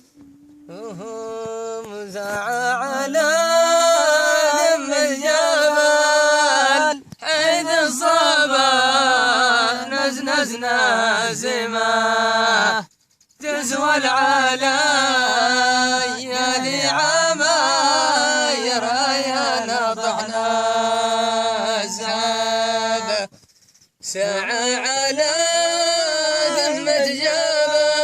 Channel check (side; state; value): both; identical; correlation 1.00